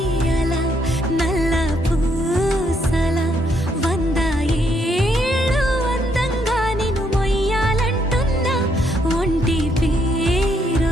అలా నల్ల పూసల 100 ఏళ్ళు అందంగా నిన్ను మొయ్యాలంటున్నా ఒంటి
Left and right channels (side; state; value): both; normal; correlation 0.74